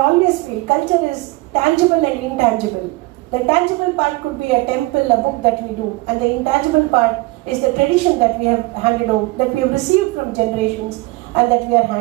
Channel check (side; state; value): left; quieter; 22.3 dB